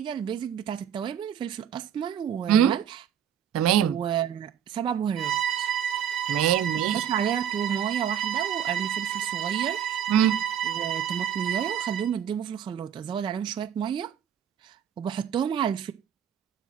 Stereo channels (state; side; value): quieter; left; 9.2 dB